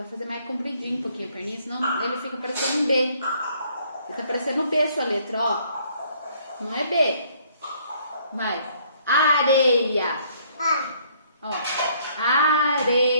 fazer mais compridinho um pouquinho a perninha, senão ele fica parecendo um B. Ele tá parecendo B a sua letra, ó. Não é B. Vai. Areia. Ó.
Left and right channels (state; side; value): inverted; both; correlation -0.63